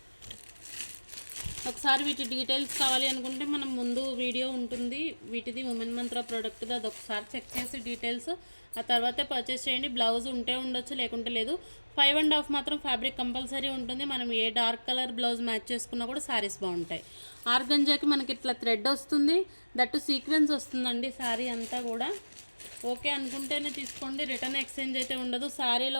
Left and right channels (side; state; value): both; inverted; correlation -1.00